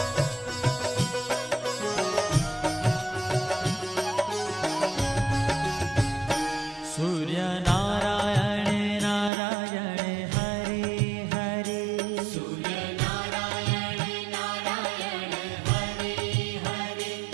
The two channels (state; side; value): drops out; left; at 9.3 s